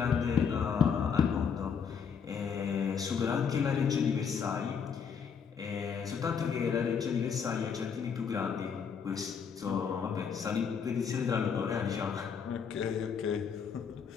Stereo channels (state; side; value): quieter; right; 6.7 dB